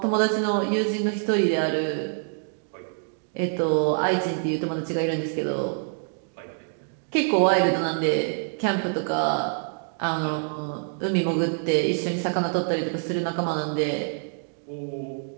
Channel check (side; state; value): left; silent; digital silence